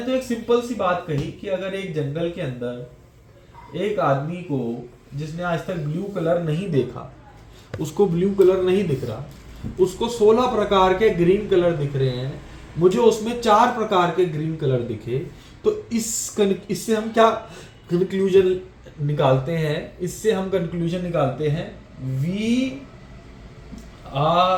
एक सिंपल सी बात कही कि अगर एक जंगल के अंदर एक आदमी को, जिसने आज तक ब्लू कलर नहीं देखा, उसको ब्लू कलर नहीं दिख रहा, उसको 16 प्रकार के ग्रीन कलर दिख रहे हैं, मुझे उसमें 4 प्रकार के ग्रीन कलर दिखे, तो इससे हम क्या कंक्लूजन निकालते हैं? इससे हम कंक्लूजन निकालते हैं, we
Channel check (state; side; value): identical; both; correlation 1.00